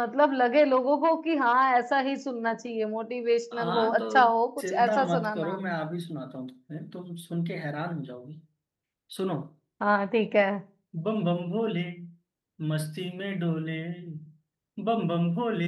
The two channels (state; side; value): identical; both; correlation 1.00